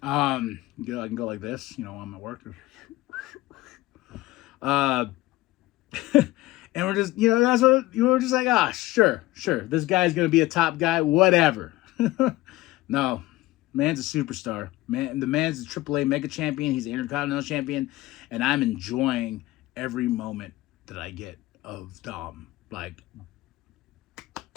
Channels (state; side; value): quieter; right; 18.1 dB